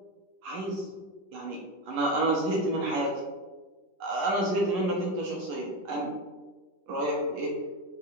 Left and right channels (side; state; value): left; late; 11 ms